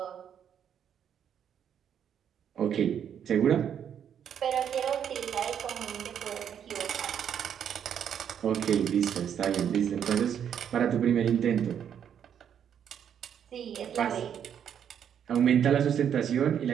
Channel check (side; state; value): left; quieter; 8.7 dB